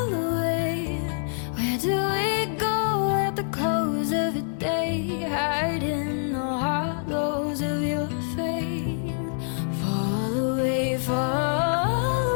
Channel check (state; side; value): silent; right; digital silence